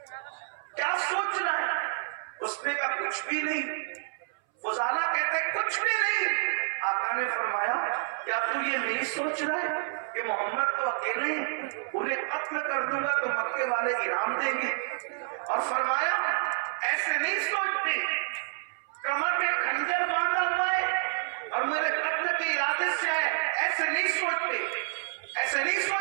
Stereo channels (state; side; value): silent; left; 59 dB below the other